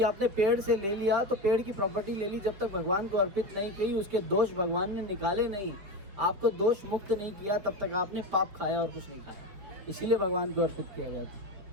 आपने पेड़ से ले लिया तो पेड़ की प्रॉपर्टी ले ली, जब तक भगवान को अर्पित नहीं की, उसके दोष भगवान ने निकाले नहीं, आपको दोष मुक्त नहीं किया, तब तक आपने पाप खाया और कुछ नहीं खाया। इसीलिए भगवान को अर्पित किया जाता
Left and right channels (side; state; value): left; late; 5.4 ms